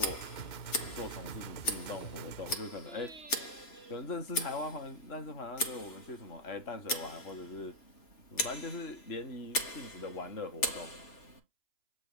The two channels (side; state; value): right; late; 3.0 ms